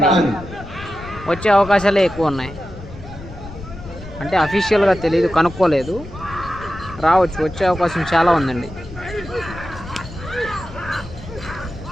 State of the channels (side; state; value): left; noise; rumble, 14 dB below the sound